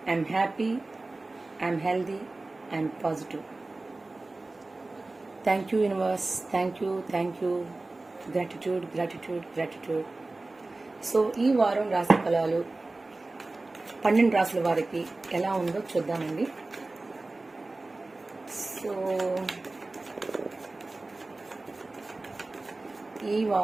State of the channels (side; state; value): left; quieter; 3.1 dB